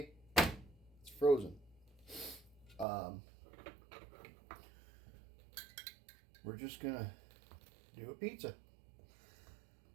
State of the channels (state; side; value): drops out; left; at 2.9 s